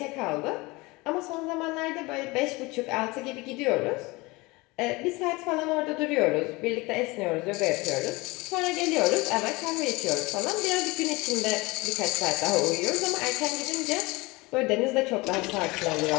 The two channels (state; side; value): quieter; right; 23.6 dB